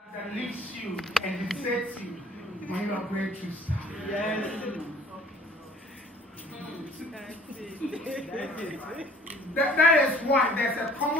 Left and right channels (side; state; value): both; normal; correlation 0.54